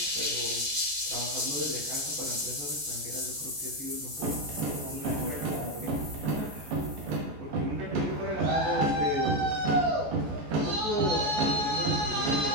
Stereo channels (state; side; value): late; left; 14 ms